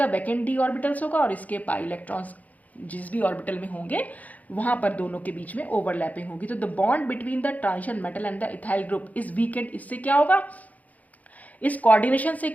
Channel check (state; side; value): late; right; 0.076 ms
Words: वैकेंट डी ऑर्बिटल्स होगा और इसके पाई इलेक्ट्रॉन्स जिस भी ऑर्बिटल में होंगे वहां पर दोनों के बीच में ओवरलैपिंग होगी। तो the bond between the transition metal and the ethyl group is weekend. इससे क्या होगा, इस कोऑर्डिनेशन से